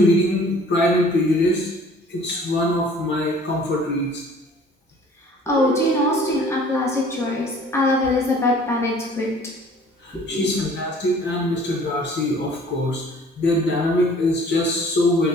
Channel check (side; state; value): both; normal; correlation 0.52